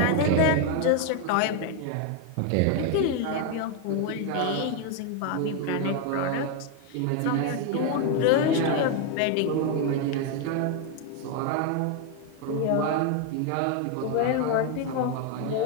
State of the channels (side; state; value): both; different; correlation 0.01